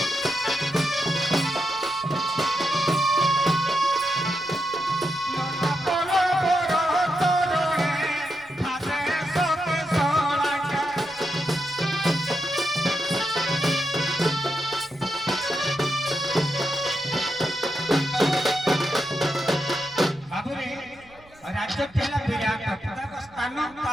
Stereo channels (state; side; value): noise; right; rumble, 27 dB below the sound